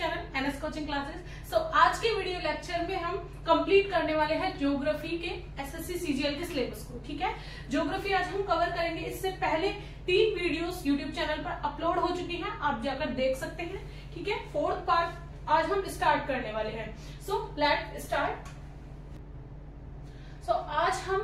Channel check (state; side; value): identical; both; correlation 1.00